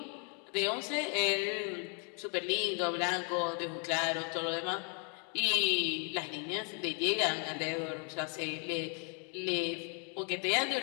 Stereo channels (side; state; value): right; quieter; 38.9 dB